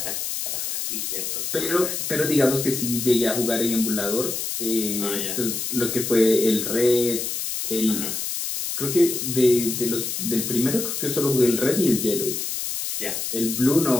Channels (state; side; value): noise; left; hiss, 3 dB below the sound